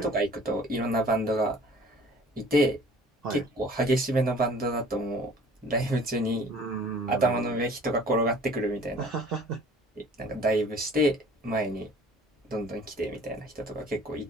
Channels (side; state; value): both; normal; correlation 0.50